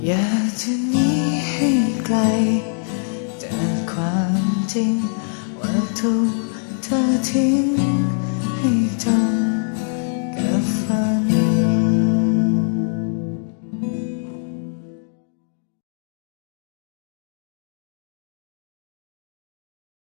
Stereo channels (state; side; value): silent; right; 56 dB below the other